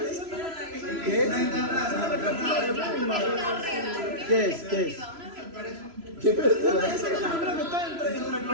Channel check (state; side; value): late; left; 3.0 ms